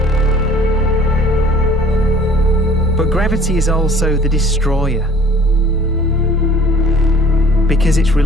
But gravity is also the destroyer, because it's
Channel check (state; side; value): normal; both; correlation 0.52